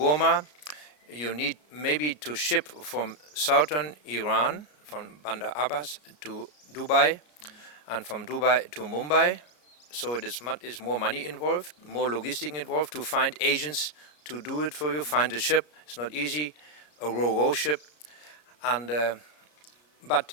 You need maybe to ship from southern Iran, from Bandar Abbas to Dubai, and from Dubai to Mumbai. So it is more money involved, more logistic involved to find agents to do it for you, find a ship. It's not easy, a ro-ro ship, and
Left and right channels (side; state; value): right; late; 33 ms